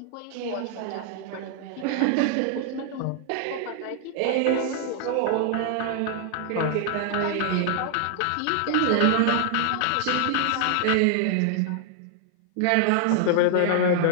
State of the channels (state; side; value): different; both; correlation 0.00